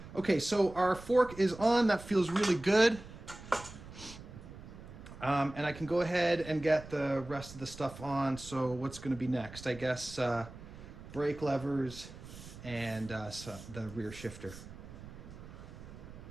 Okay, so our fork is on. That feels really good. And I can go ahead and get the rest of the stuff on. So what's going to be next? I guess brake levers and so the rear shifter.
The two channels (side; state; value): right; noise; rumble, 15 dB below the sound